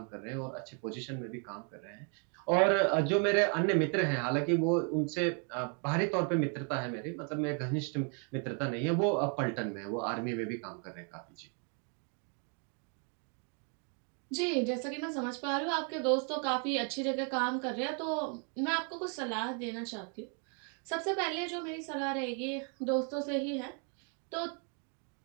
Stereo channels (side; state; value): left; quieter; 39.9 dB